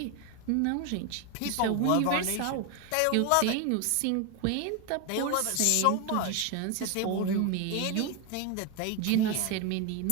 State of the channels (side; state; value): both; different; correlation 0.02